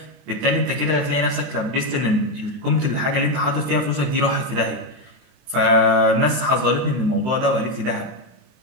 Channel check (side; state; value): left; late; 23 ms